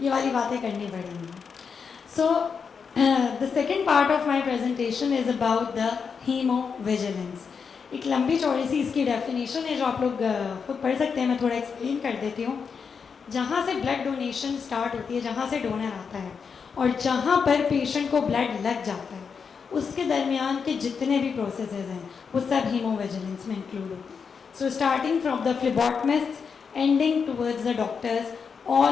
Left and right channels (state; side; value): quieter; right; 6.0 dB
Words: ये वाली बातें करनी पड़ेंगी. So the second part of my presentation is about the haemovigilance. एक लंबी चौड़ी सी इसकी डेफिनेशन है जो आप लोग खुद पढ़ सकते हैं. मैं थोड़ा एक्सप्लेन कर देती हूँ. जहाँ से ब्लड डोनेशन स्टार्ट होती है, जहाँ से डोनर आता है और जहाँ पर पेशेंट को ब्लड लग जाता है, उसके दरमियान के जितने भी प्रोसेसेस हैं वो सब हीमोविजिलेंस में इंक्लूड होते हैं. So starting from the phlebotomist ending towards the doctors,